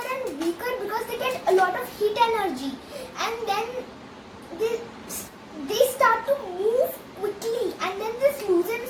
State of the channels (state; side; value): identical; both; correlation 1.00